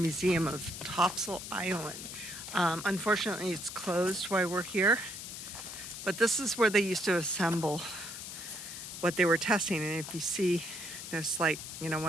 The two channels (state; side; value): noise; left; hiss, 9 dB below the sound